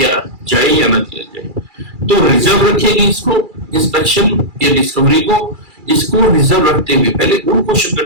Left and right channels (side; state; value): left; late; 2.3 ms